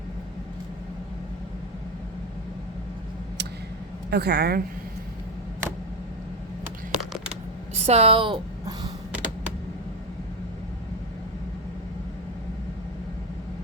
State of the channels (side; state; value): both; normal; correlation 0.13